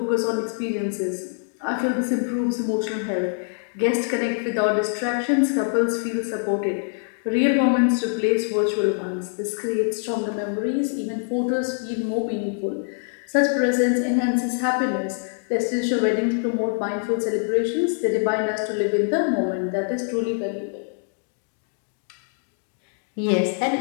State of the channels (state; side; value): silent; right; 62 dB below the other